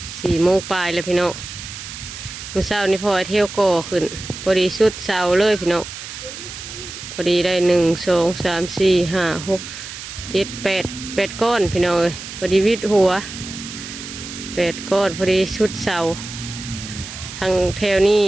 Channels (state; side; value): noise; right; hiss, 11 dB below the sound